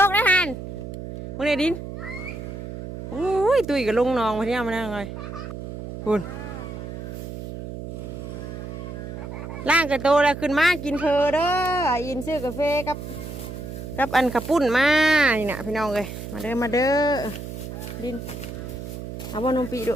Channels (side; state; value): right; noise; hum, 9 dB below the sound